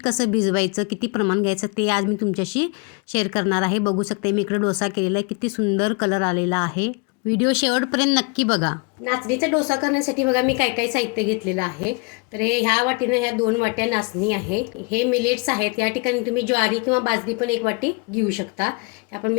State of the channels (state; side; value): quieter; right; 31.0 dB